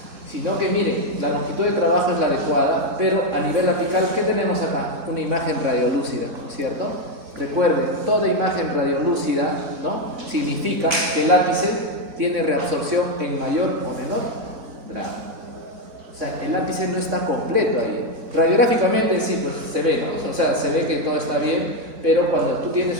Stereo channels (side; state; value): left; late; 3.6 ms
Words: sino que miren, la longitud de trabajo es la adecuada, pero a nivel apical, ¿qué tenemos acá? Una imagen radiolúcida, ¿no es cierto? Recuerden, toda imagen radiolúcida, ¿no? Significa que el ápice tiene reabsorción en mayor o menor grado. O sea, el ápice no está completo ahí. Radiográficamente sí, pues se ve, ¿no? O sea, se ve que todo está bien, pero cuando tú